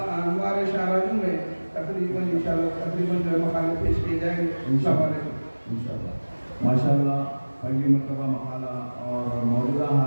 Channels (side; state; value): both; inverted; correlation -1.00